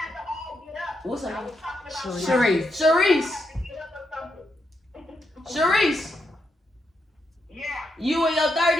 to all get up. What's her I name? was talking about Sharice. Sharice. get up or something. Sharice. Yeah. You in your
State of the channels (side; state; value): both; normal; correlation 0.81